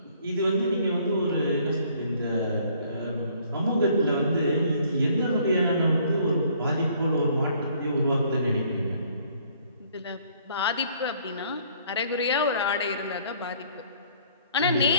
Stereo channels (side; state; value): both; inverted; correlation -0.60